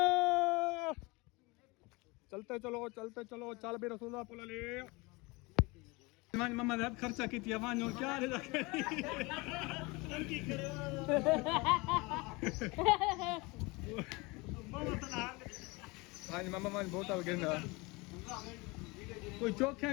चलते चलो चलते चलो चल बे रसूलुल्लाह पुल ले मान मम्मा ने खर्चा की थी वान क्या रे की करे आज मम्मा मान बोतल गिरना कोई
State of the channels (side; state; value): right; quieter; 25.2 dB